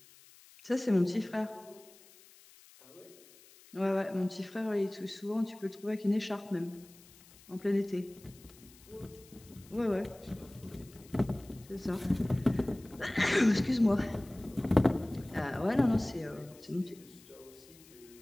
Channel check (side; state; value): left; noise; hiss, 24 dB below the sound